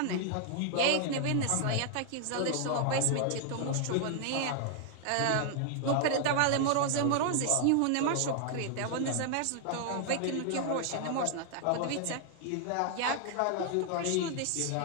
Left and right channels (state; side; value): different; both; correlation 0.00